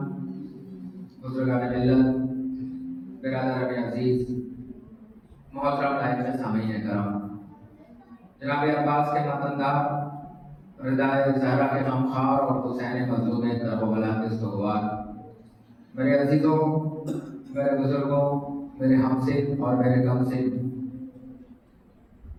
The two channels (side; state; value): both; identical; correlation 1.00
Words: बुज़ुर्गान मिल्लत, बिरादरान अज़ीज़, मोहतरम नाइब सामीन करम, जनाब अब्बास के मतनदार, रिदाए ज़हरा के गमख़ार और हुसैन मज़लूम करबला के सुगवार, मेरे अज़ीज़ों, मेरे बुज़ुर्गों, मेरे हमसिन और मेरे गमसिन,